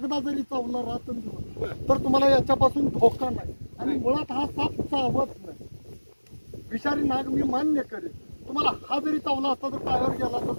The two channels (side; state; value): both; inverted; correlation -1.00